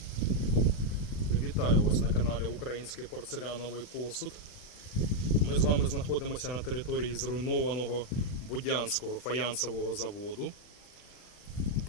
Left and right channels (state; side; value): late; right; 40 ms